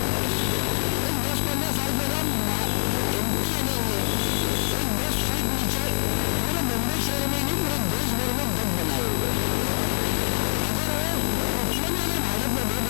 10-15 साल पहला MTNL ने एक 10 फीट नीचे पूरे मुंबई शहर में ही नहीं पूरे देश भर में डग बनाए हुए। अगर वो उतने भी अगर भाड़े पे दे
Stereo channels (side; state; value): right; silent; digital silence